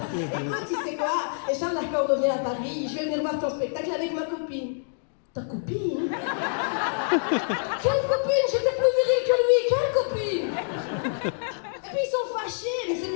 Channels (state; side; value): silent; right; digital silence